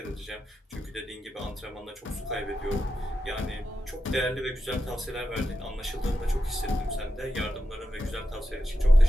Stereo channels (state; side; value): normal; both; correlation 0.89